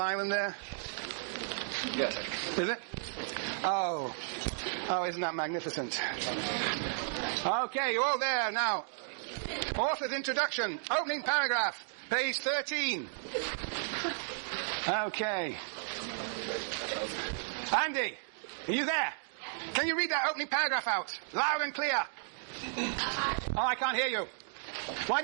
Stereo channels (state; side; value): silent; left; digital silence